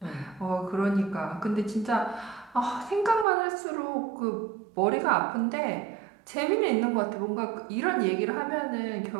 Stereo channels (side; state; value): left; drops out; at 3.2 s